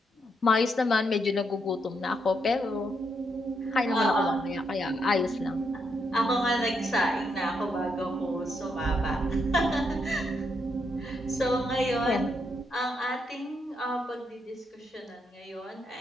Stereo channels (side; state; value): both; normal; correlation 0.79